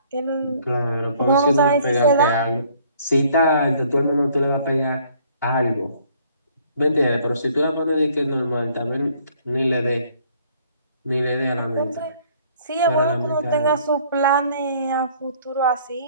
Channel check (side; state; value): both; inverted; correlation -0.60